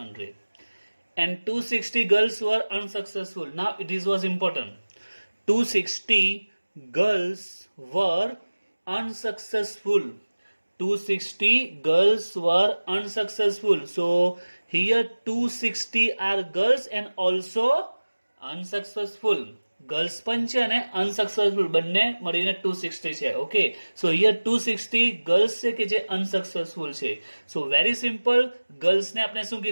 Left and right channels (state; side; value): inverted; both; correlation -1.00